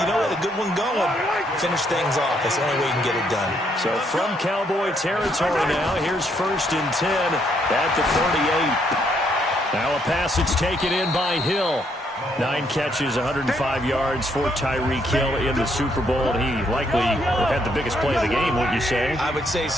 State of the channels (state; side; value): normal; both; correlation 0.72